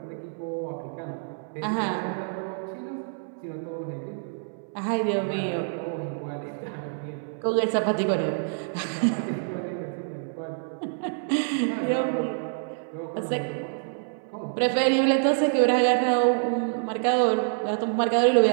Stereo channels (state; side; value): silent; left; 60 dB below the other